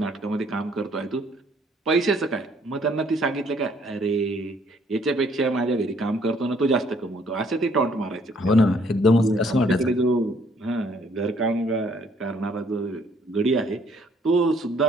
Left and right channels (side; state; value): both; normal; correlation 0.64